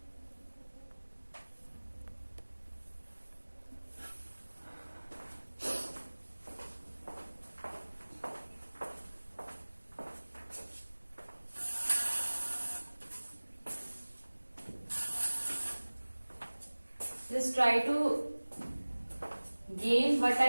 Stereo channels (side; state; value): both; inverted; correlation -1.00